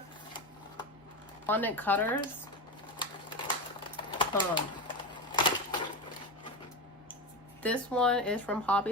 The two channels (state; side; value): normal; both; correlation 0.19